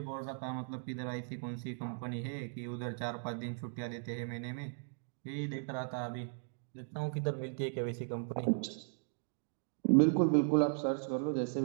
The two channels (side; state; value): left; silent; digital silence